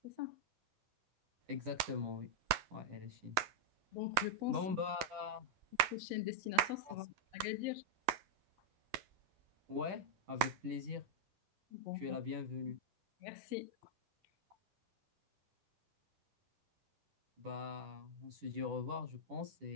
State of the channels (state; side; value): late; left; 10 ms